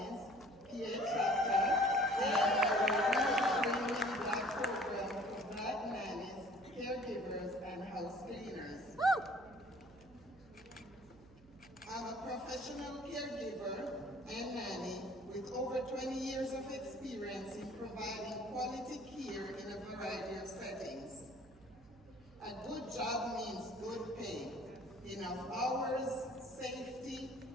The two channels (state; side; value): noise; right; hum, 24 dB below the sound